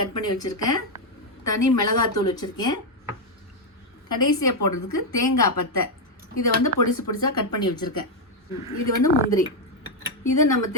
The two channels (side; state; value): both; normal; correlation 0.02